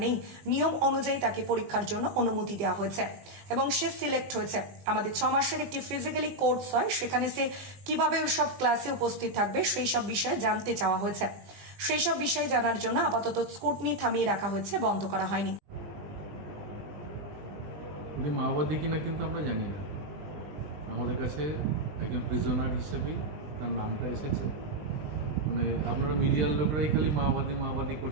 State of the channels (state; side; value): late; left; 20 ms